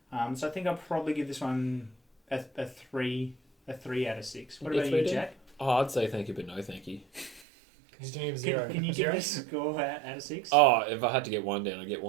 So I think I'll probably give this one a 3 out of 6. What about you, Jack? Oh, I'd say thank you, but no thank you. He's doing a 0. Can you give this a score out of 6? Oh, if I had to get one down, I'd get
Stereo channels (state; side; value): drops out; left; at 7.4 s